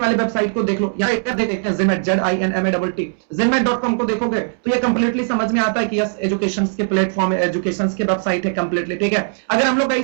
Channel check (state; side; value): silent; left; digital silence